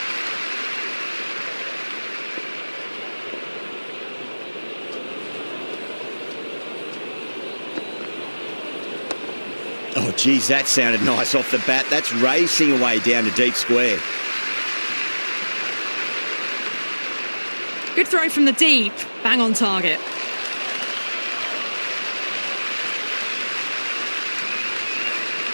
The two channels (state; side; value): inverted; both; correlation -1.00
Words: Oh, geez, that sounded nice off the bat. That's racing away down to deep square. Good throw from the deep, bang on target.